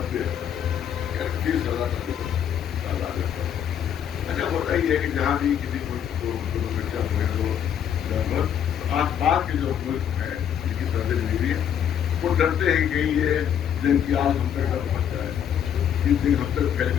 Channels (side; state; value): right; quieter; 9.1 dB